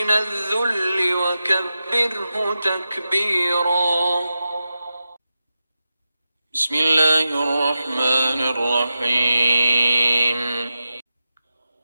الذل وكبره تكبيرا بسم الله الرحمن الرحيم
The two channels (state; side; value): inverted; both; correlation -0.90